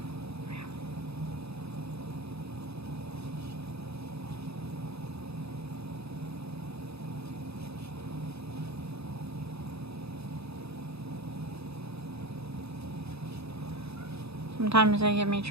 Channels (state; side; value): late; left; 0.79 ms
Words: Sometimes they give me